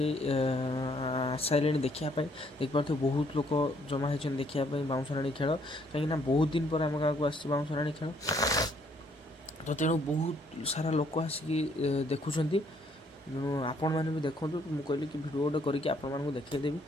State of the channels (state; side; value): normal; both; correlation 0.66